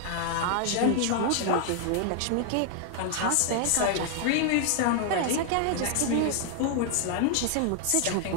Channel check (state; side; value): different; both; correlation 0.00